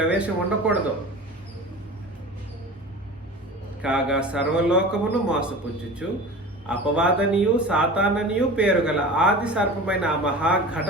ఉండకూడదు. కాగా సర్వలోకమును మోసపుచ్చుచు అపవాదనియు సాతాననియు పేరు గల ఆది సర్పమైన ఆ మహా ఘట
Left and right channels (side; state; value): both; normal; correlation 0.35